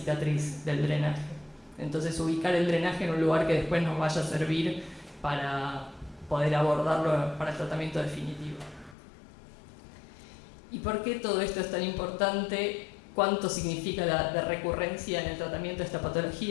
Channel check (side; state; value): right; drops out; at 9.0 s